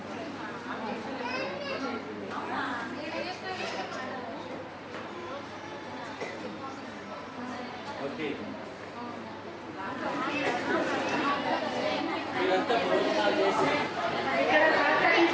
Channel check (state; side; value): identical; both; correlation 1.00